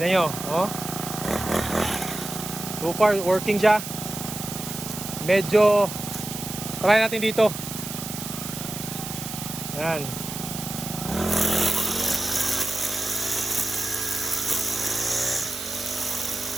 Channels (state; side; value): noise; right; hiss, 8 dB below the sound